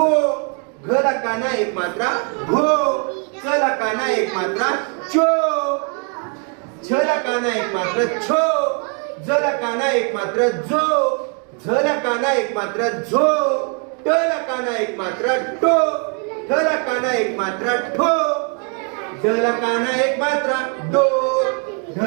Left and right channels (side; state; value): left; quieter; 39.3 dB